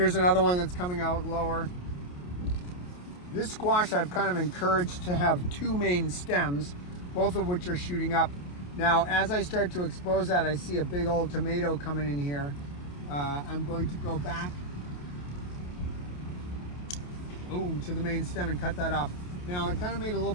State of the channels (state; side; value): late; right; 28 ms